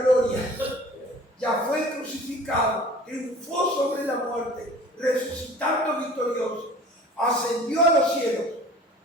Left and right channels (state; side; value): normal; both; correlation 0.46